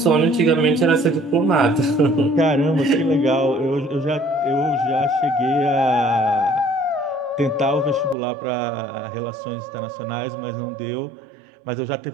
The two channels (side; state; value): left; drops out; at 8.2 s